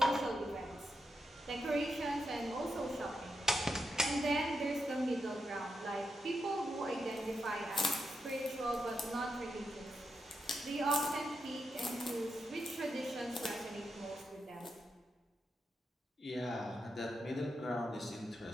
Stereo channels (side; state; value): both; normal; correlation 0.85